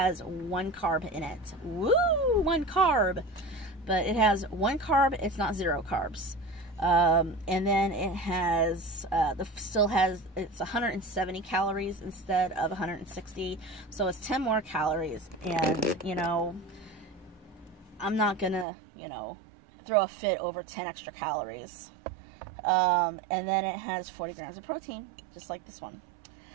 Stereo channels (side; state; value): left; drops out; at 18.7 s